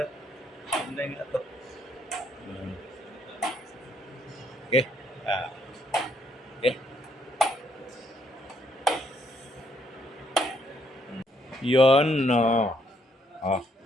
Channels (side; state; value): both; normal; correlation 0.71